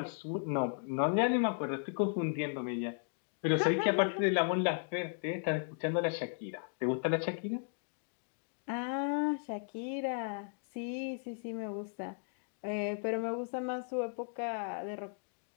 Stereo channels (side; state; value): right; silent; digital silence